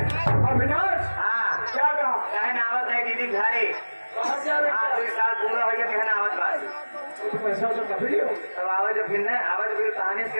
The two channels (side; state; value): both; inverted; correlation -1.00